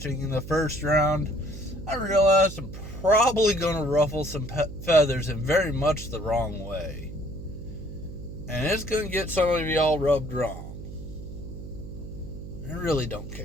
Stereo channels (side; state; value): right; noise; hum, 11 dB below the sound